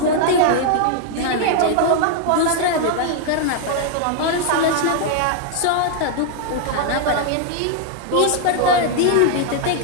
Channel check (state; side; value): different; both; correlation 0.00